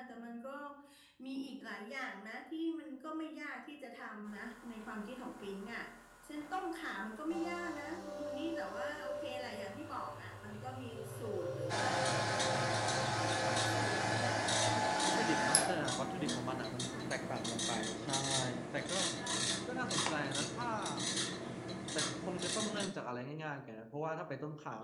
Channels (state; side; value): identical; both; correlation 1.00